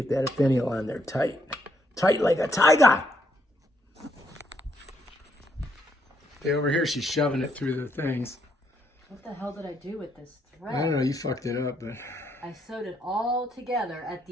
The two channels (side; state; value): both; normal; correlation 0.74